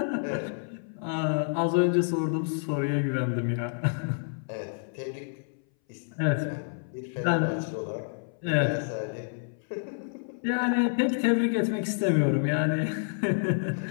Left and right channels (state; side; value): silent; right; 59 dB below the other